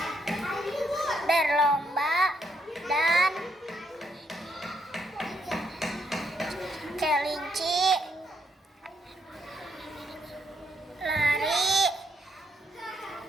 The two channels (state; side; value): normal; both; correlation 0.75